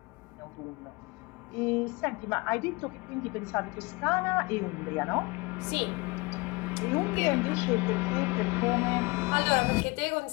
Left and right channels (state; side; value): quieter; right; 25.4 dB